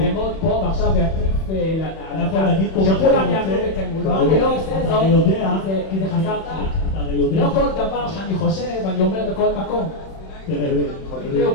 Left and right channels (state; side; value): late; right; 31 ms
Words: פה ועכשיו ואטיף על הקהל, שכולם יעמדו בתמול. לא, אני לא עושה זאת, כי זה חסר טקט. אתה הרי יודע... לא כל דבר שאני חושב, אני אומר בכל מקום.